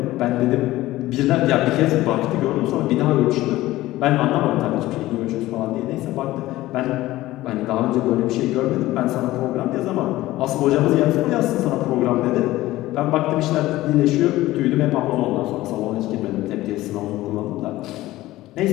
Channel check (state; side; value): quieter; right; 16.8 dB